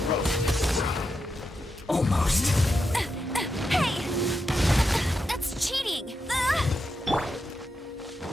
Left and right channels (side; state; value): both; normal; correlation 0.86